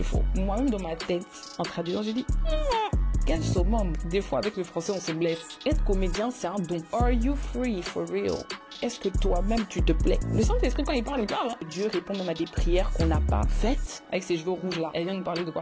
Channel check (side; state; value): both; identical; correlation 1.00